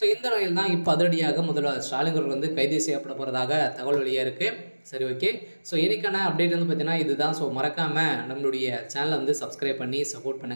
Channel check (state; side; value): inverted; both; correlation -1.00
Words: இந்த நிலையில் தான் இப்போ அதிரடியாக முதல்வர் ஸ்டாலின் அவர்கள் கைது செய்யப்பட போகிறதாக தகவல் வெளியாக இருக்குது. சரி, ஓகே. இன்னைக்கான அப்டேட் பார்த்தீங்கன்னா இதுதான். மறக்காமல் நம்மளுடைய சேனலை சப்ஸ்கிரைப் பண்ணி சப்போர்ட்